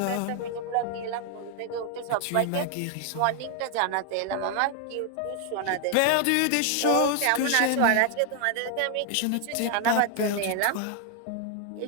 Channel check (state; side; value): different; both; correlation 0.00